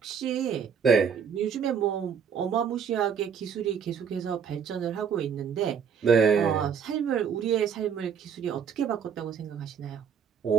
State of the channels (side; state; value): left; quieter; 7.2 dB